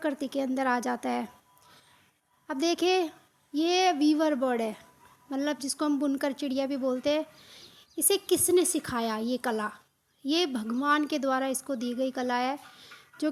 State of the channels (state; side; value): identical; both; correlation 1.00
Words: के अंदर आ जाता है। अब देखिए, ये वीवर बर्ड है, मतलब जिसको हम बुनकर चिड़िया भी बोलते हैं। इसे किसने सिखाया ये कला? ये भगवान के द्वारा इसको दी गई कला है, जो